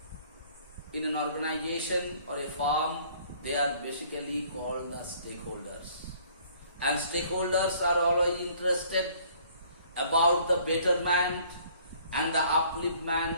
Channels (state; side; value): inverted; both; correlation -0.57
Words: in an organization or a firm. They are basically called the stakeholders. And stakeholders are always interested about the betterment and the